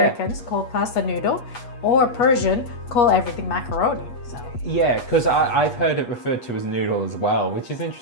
call pasta noodle or Persian call everything macaroni. So. Yeah, because I've heard it referred to as noodle as well, which is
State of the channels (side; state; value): right; late; 8.3 ms